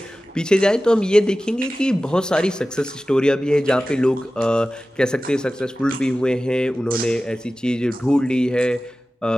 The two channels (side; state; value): both; normal; correlation 0.96